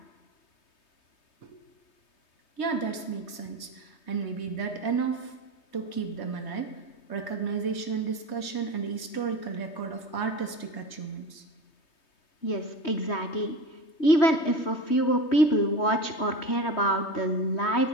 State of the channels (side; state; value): right; late; 3.2 ms